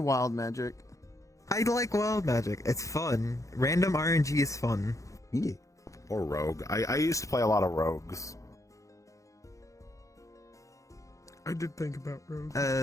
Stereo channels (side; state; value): right; late; 0.15 ms